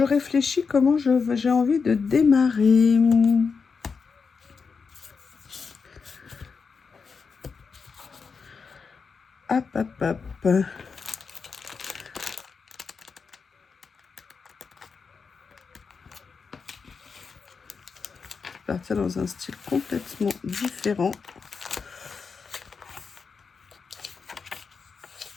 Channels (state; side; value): quieter; right; 5.3 dB